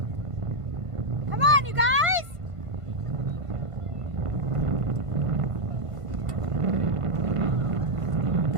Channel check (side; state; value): left; late; 1.5 ms